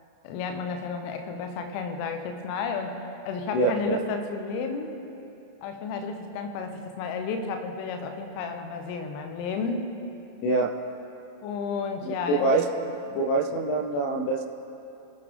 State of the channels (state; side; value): late; right; 34 ms